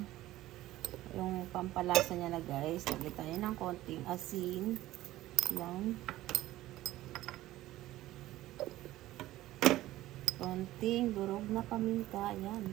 yung pampalasa niya na guys. Lagay tayo ng konting asin. Yan. Konting durog na paminta.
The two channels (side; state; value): left; quieter; 15.7 dB